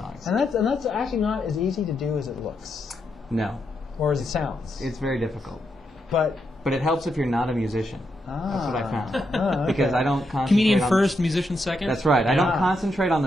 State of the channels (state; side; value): normal; both; correlation 0.82